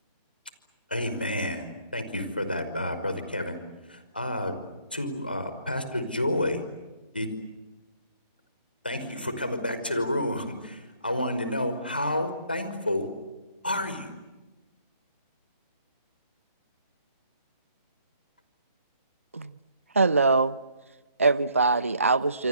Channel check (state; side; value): inverted; both; correlation -0.65